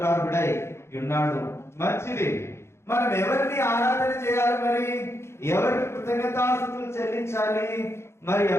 ఉన్నాడు. మంచిది. మనం ఎవరిని ఆరాధన చేయాలి? మరి ఎవరికి కృతజ్ఞతాస్తుతులు చెల్లించాలి? మరి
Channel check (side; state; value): right; late; 0.13 ms